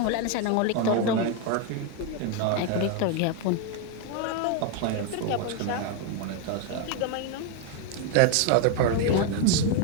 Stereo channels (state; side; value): different; both; correlation 0.01